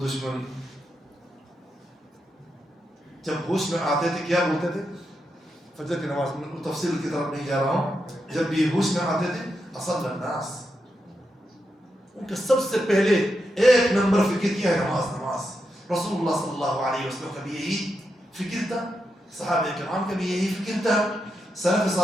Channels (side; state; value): both; normal; correlation 0.85